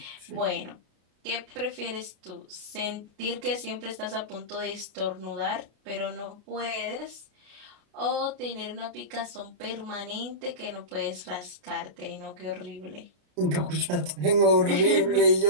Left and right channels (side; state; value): left; late; 33 ms